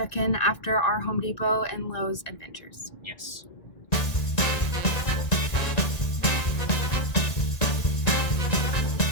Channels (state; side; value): late; right; 1.9 ms